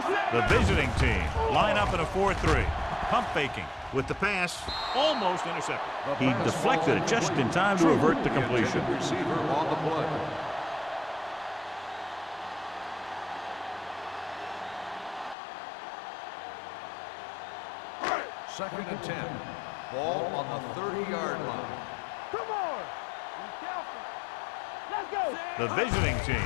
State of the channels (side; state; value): right; drops out; at 15.4 s